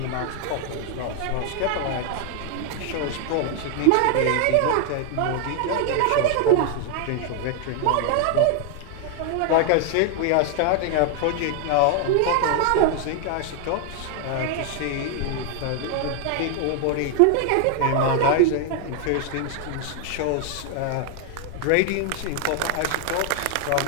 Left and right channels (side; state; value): both; different; correlation 0.00